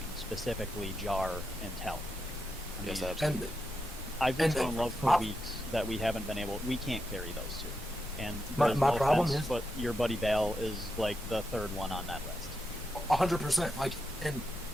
specifically Jar and Tell. I Yes, mean, absolutely. I've been and- so in love for weeks that we haven't been able. We can't carry those two. And My there's no problem offense, is- but your buddy Bale is like the third one on that list. 100%. Like, and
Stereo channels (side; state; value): both; normal; correlation 0.86